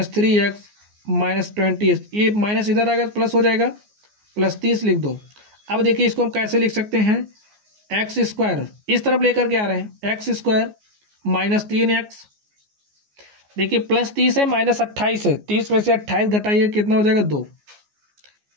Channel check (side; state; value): left; late; 14 ms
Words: -28। ये माइनस इधर आएगा तो प्लस हो जाएगा, +30 लिख दो। अब देखिए इसको हम कैसे लिख सकते हैं, x² इस तरफ लेकर के आ रहे हैं, x² -3x, देखिए +30 है -28 है, 30 में से 28 घटाइए कितना हो जाएगा, 2